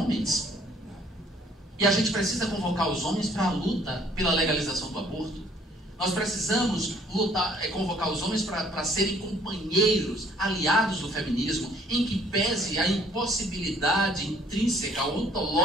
E a gente precisa convocar os homens para a luta pela legalização do aborto. Nós precisamos convocar os homens para serem companheiros, aliados do feminismo, em que pese a impossibilidade intrínseca,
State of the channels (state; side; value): normal; both; correlation 0.60